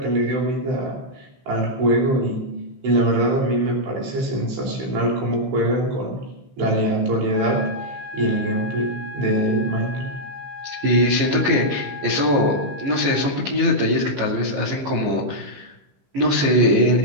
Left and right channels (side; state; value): left; late; 15 ms